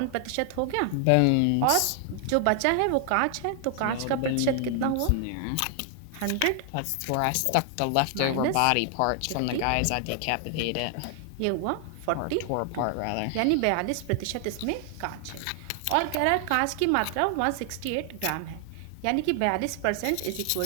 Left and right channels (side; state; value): both; different; correlation 0.00